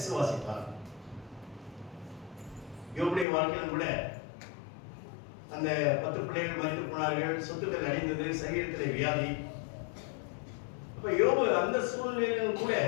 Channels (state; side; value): drops out; right; at 3.2 s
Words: யோபுடைய வாழ்க்கையிலும் கூட அந்த 10 பிள்ளைகள் மரித்து போனார்கள், சொத்துக்கள் அடைந்தது, சரீரத்தில் வியாதி. அப்ப யோபு அந்த சூழ்நிலையிலும் கூட